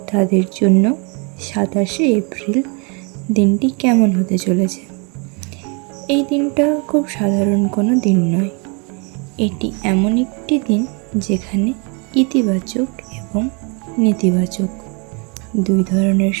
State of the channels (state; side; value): quieter; left; 33.0 dB